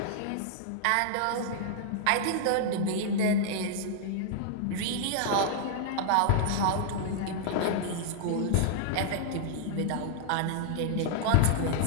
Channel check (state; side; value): different; both; correlation -0.01